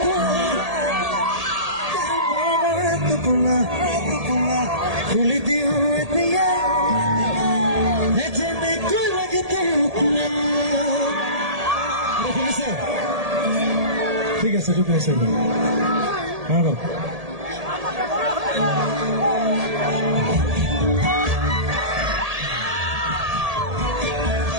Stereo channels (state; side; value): late; left; 1.8 ms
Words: টোপোলা খুলি দিওঁ এতিয়া যেনেকৈ লাগে শুনিছে? ঠিক আছে ঠিক আছে